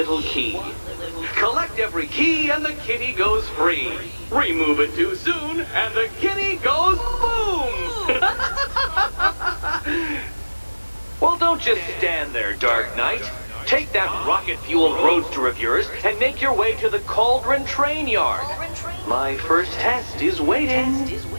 key. Collect every key and the kitty goes free. Remove it too soon and the kitty goes boom! Well, don't just stand there, Dark Knight. Take that rocket-fueled roadster of yours and make your way to the Cauldron Train Yard. My first test is waiting.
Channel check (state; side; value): inverted; both; correlation -1.00